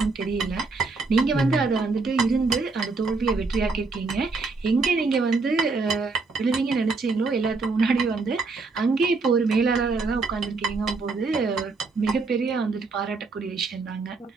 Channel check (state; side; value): quieter; left; 4.0 dB